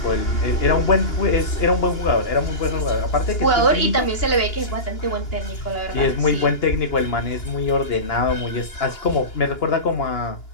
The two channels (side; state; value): right; late; 2.9 ms